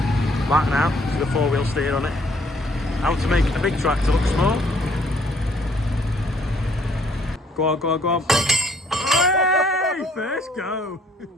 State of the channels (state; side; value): normal; both; correlation 0.63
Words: Back now with a 4-wheel steer on it. How to make a big tractor look small. Go on, go on, go on. First go.